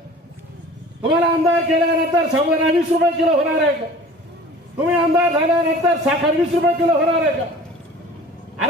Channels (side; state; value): both; normal; correlation 0.44